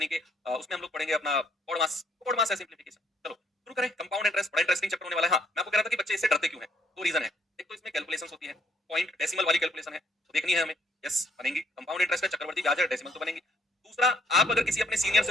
कि उसमें हम लोग पढ़ेंगे अपना पॉड मास है सिम्प्लीफिकेशन। चलो शुरू करें। कंपाउंड इंटरेस्ट बड़ा इंटरेस्टिंग चैप्टर होने वाला है। हाँ, मैं आपको कह रहा था कि बच्चे इससे डरते क्यों हैं? दो रीजन है। एक तो इसमें कैलकुलेशंस होती है, पॉइंट डेसिमल वाली कैलकुलेशन है, तो देखनी है हमें। यस, बनेंगी। कंपाउंड इंटरेस्ट है, चक्रवर्ती ब्याज है, डेसिमल तो बनेंगी। दूसरा, आप अगर किसी अपने सीनियर से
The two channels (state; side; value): normal; both; correlation 0.68